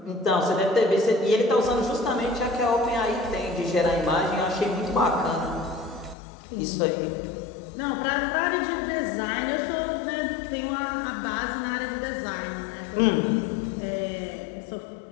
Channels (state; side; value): drops out; right; at 6.2 s